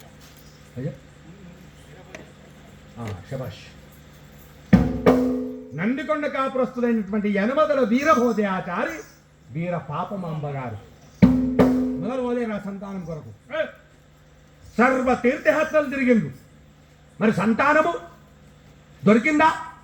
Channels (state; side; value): identical; both; correlation 1.00